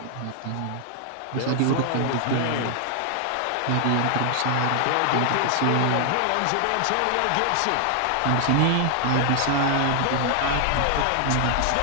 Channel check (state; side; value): different; both; correlation 0.00